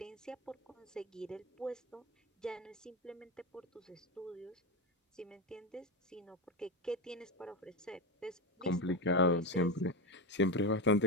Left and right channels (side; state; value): both; normal; correlation 0.15